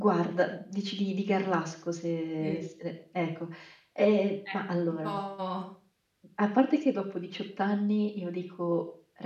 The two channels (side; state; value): both; identical; correlation 1.00